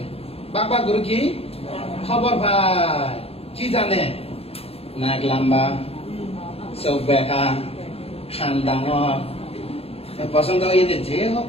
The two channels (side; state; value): right; late; 0.29 ms